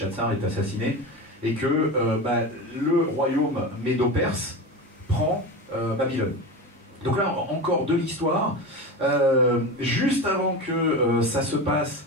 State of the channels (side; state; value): both; normal; correlation 0.25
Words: est assassiné. Et que le royaume médo-perse prend Babylone. Donc là, encore de l'histoire. Juste avant que ça se passe,